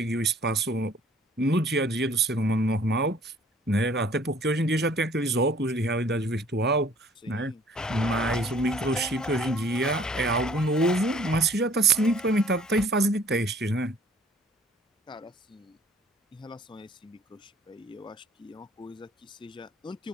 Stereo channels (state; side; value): normal; both; correlation 0.56